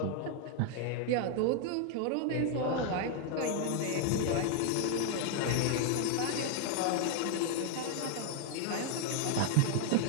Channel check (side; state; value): both; different; correlation 0.00